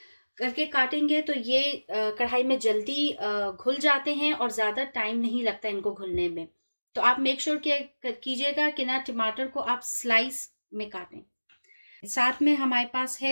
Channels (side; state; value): both; inverted; correlation -1.00